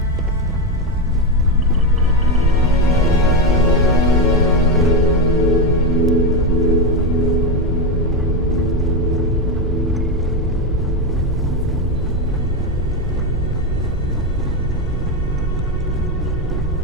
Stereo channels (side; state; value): both; normal; correlation 0.11